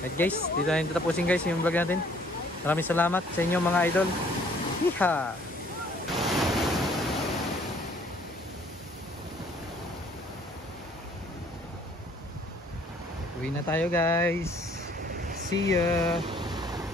guys, dito na rin tapusin guys yung vlog natin. Maraming salamat sa inyo mga idol. Hiha! Uwi na tayo guys. See ya.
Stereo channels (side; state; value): both; normal; correlation 0.59